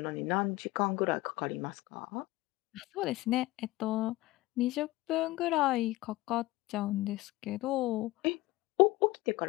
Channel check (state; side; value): quieter; right; 18.9 dB